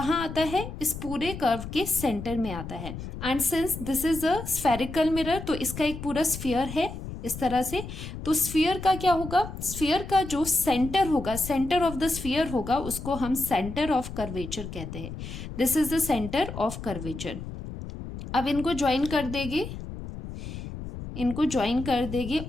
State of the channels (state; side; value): noise; left; rumble, 9 dB below the sound